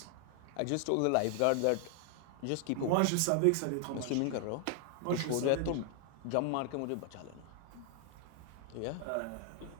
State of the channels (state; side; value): different; both; correlation 0.00